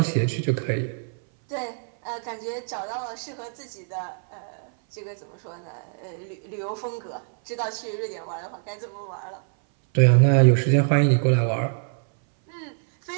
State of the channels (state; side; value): silent; left; 59 dB below the other